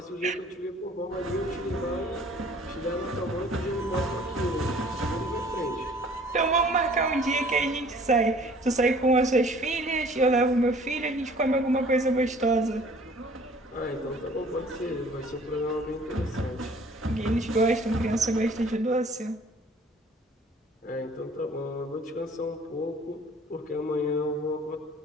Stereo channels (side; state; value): both; normal; correlation 0.53